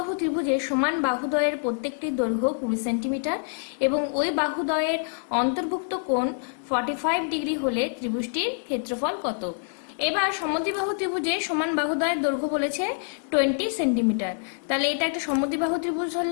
ত্রিভুজের সমান বাহুদ্বয়ের প্রত্যেকটির দৈর্ঘ্য 20 সেন্টিমিটার এবং ওই বাহুদ্বয়ের অন্তর্ভুক্ত কোণ 45 ডিগ্রি হলে ত্রিভুজটির ক্ষেত্রফল কত? এবার সমদ্বিবাহু ত্রিভুজের সমান বাহুদ্বয়ের দৈর্ঘ্য বলেছে 20 সেন্টিমিটার। তাহলে এটা একটা সমদ্বিবাহু ত্রিভুজ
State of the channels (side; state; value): right; silent; digital silence